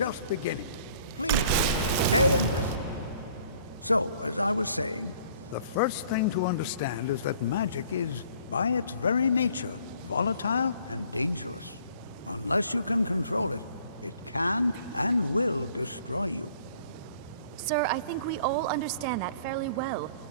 beginning. Please, stay and listen. So, as I was saying, the first thing to understand is that magic is, by its very nature, volatile and dangerous. Unless you can control it, it can and will destroy you. Sir, I think we all understand that fairly well.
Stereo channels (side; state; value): both; inverted; correlation -0.56